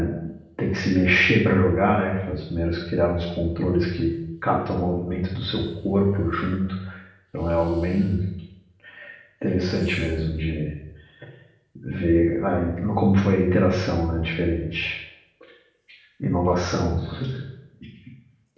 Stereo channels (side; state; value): both; identical; correlation 1.00